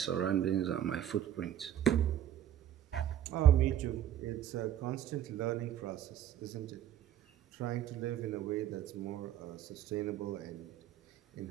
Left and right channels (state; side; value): quieter; left; 10.9 dB